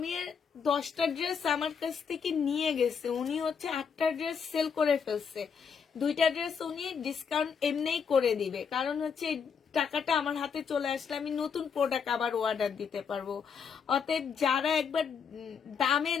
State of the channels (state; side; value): quieter; right; 6.5 dB